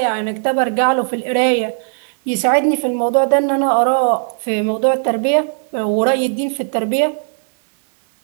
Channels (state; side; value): silent; left; 68 dB below the other